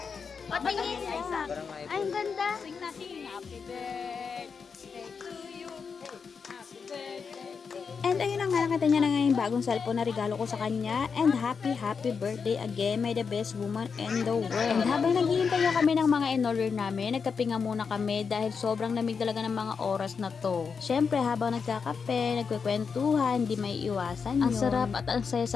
Patingin! Parang Ay, iPhone. ang ganda! Sing natin, happy birthday to you. Happy birthday to you. And ayun na nga, nakita niya na nga yung bagong cellphone na regalo ko sa kanya. And happy birthday again. May the best woman in the world. And habang naghihintay nga kami ng mga in-order namin, nagkape nga muna kami dahil sobrang lamig talaga ng mga oras na to. Syempre, habang nagkakape, nagkwekwentuhan, hindi may iwasan yun. Ang sarap at ang saya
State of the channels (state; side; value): quieter; right; 5.7 dB